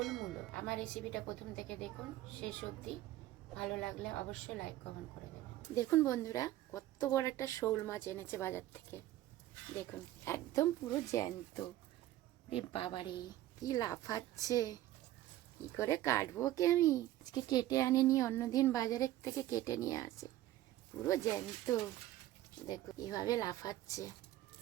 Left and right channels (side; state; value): left; quieter; 14.5 dB